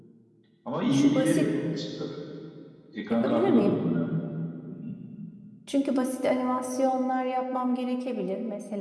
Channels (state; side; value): identical; both; correlation 1.00